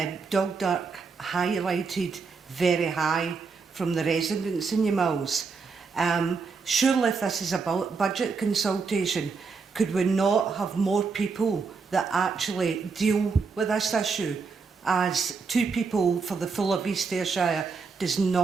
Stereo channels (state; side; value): quieter; left; 4.9 dB